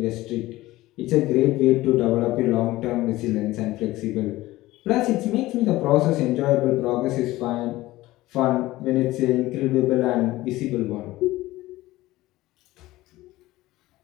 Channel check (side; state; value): right; quieter; 17.7 dB